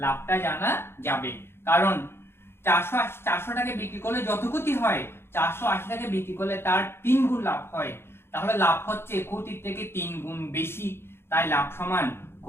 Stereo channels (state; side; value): late; right; 0.12 ms